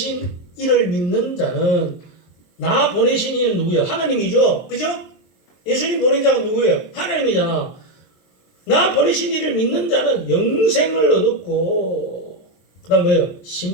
이를 믿는 자는, 나 보내신 이는 누구예요? 하나님이죠. 그죠? 예수님 보낸 자가 누구예요? 하나님이잖아. 나 보내신 이를 믿는 자는 영생을 얻었고 그 다음 뭐예요?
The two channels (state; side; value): late; right; 23 ms